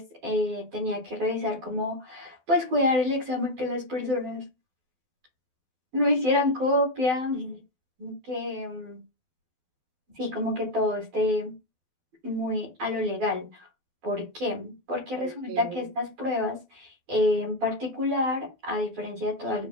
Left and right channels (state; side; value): late; left; 12 ms